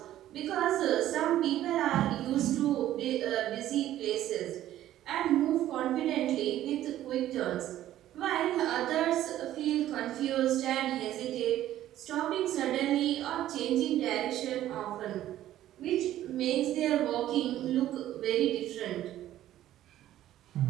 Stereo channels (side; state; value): left; quieter; 13.1 dB